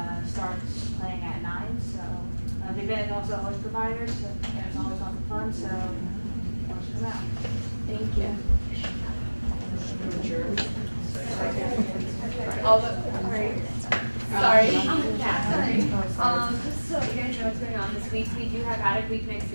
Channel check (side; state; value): both; inverted; correlation -1.00